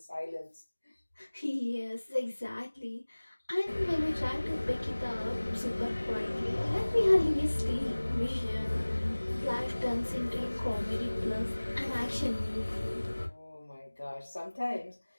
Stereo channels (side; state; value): both; inverted; correlation -1.00